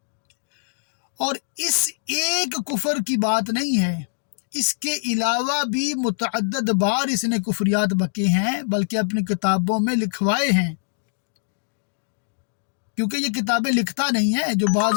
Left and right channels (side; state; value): right; silent; digital silence